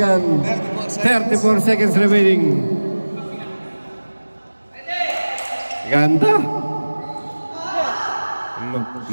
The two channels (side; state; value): both; inverted; correlation -1.00